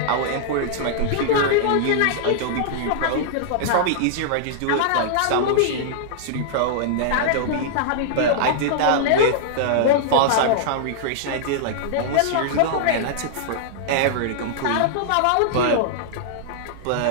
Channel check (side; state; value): both; different; correlation -0.01